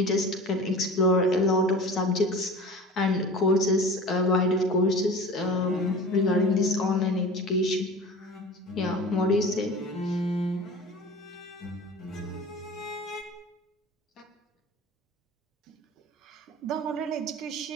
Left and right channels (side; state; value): both; normal; correlation 0.38